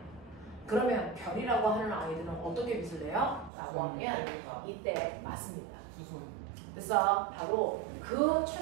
그러면 별이라고 하는 아이들은 어떻게 빛을 내요? 라고 하면 이때 맞습니다. 그래서 바로 그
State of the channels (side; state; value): left; drops out; at 3.5 s